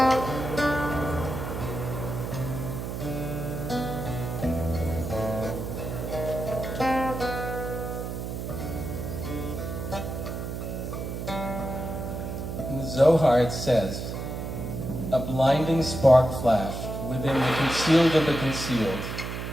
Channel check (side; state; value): right; noise; hum, 5 dB below the sound